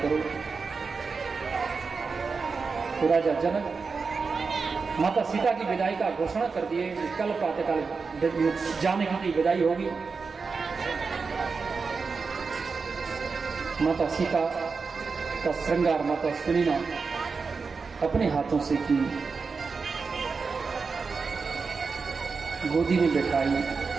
तो राजा जनक माता सीता की विदाई का घोषणा कर दिए, कल प्रातःकाल जानकी की विदाई होगी। माता सीता का श्रृंगार माता सुनीना अपने हाथों से की, गोदी में बैठाई,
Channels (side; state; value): left; quieter; 4.8 dB